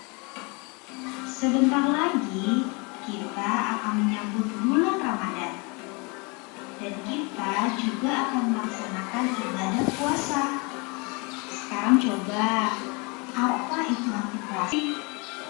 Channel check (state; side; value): quieter; right; 29.9 dB